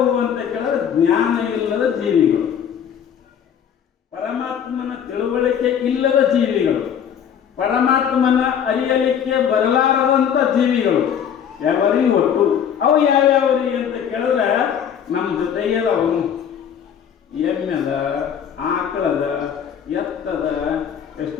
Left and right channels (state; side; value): quieter; right; 8.4 dB